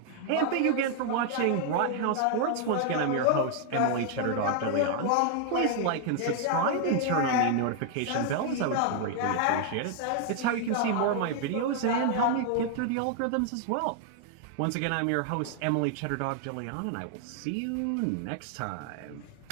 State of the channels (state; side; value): different; both; correlation 0.00